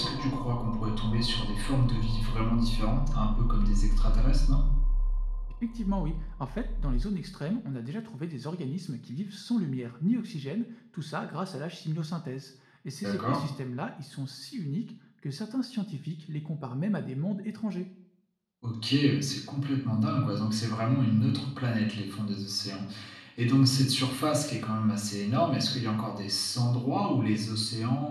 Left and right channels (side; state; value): both; identical; correlation 1.00